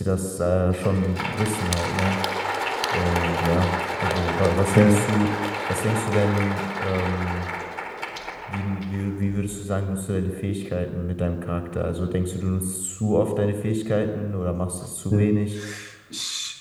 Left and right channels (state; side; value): identical; both; correlation 1.00